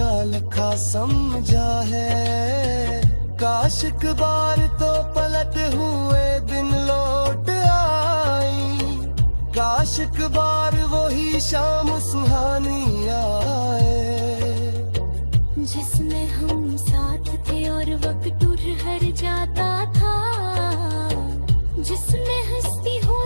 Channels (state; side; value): inverted; both; correlation -1.00